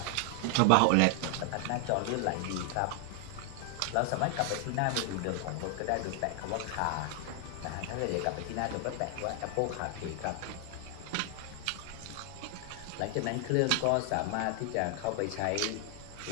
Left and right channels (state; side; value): different; both; correlation 0.00